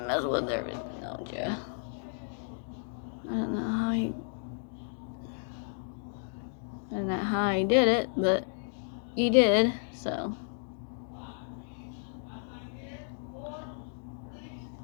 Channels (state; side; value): silent; right; digital silence